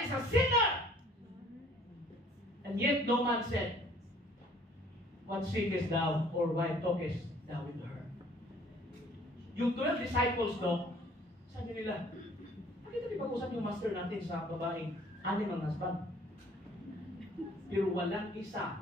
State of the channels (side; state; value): both; normal; correlation 0.56